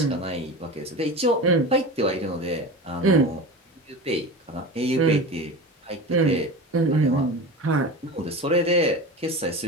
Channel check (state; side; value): normal; both; correlation 0.30